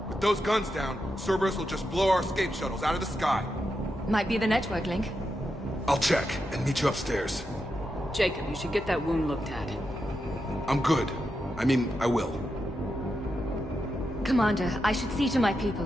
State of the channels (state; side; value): normal; both; correlation 0.86